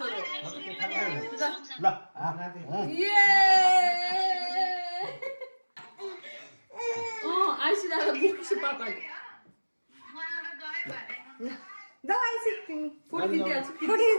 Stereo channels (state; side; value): inverted; both; correlation -1.00